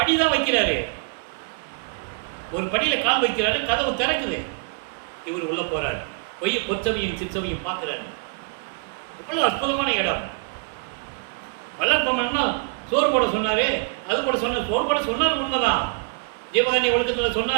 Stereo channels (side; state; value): left; quieter; 38.0 dB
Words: வைக்கிறாரு, ஒரு படியில கால் வைக்கிறாரு, கதவு திறக்குது, இவர் உள்ள போறாரு, பொற்சபையும் சிற்சபையும் பார்க்கிறாரு. இவ்வளவு அற்புதமான இடம். வல்லற்பமன்னா சோறு போட சொன்னாரு, அது போட சொன்னார், சோறு போட சொன்னார் உண்மைதான், ஜீவகாருண்ய ஒழுக்கத்தில்